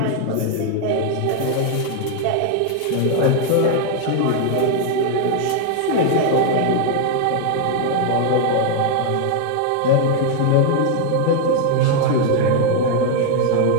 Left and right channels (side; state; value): both; different; correlation 0.00